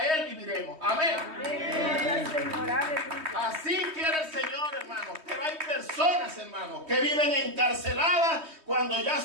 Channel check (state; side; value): late; left; 3.2 ms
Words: Él viviremos. Amén. Así quiere el Señor, hermanos. Pero hay personas, hermanos, que viven encarceladas cuando ya